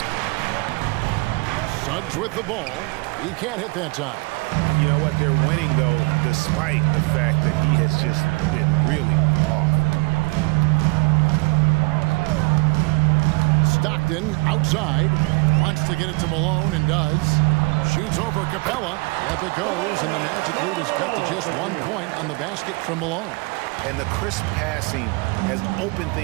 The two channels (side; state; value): left; quieter; 27.6 dB